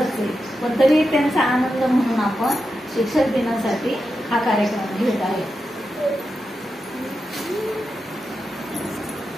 आहे, पण तरी त्यांचा आनंद म्हणून आपण शिक्षक दिनासाठी हा कार्यक्रम घेत आहे.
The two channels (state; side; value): normal; both; correlation 0.88